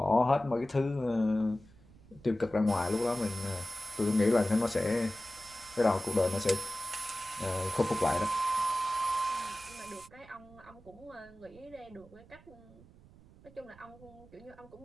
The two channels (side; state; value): right; noise; rumble, 23 dB below the sound